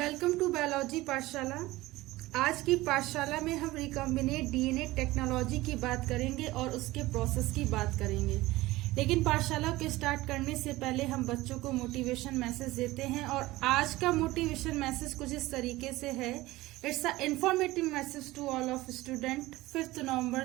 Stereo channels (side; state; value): left; quieter; 18.7 dB